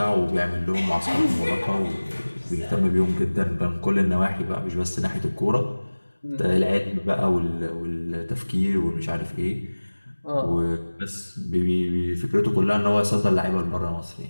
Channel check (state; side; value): inverted; both; correlation -1.00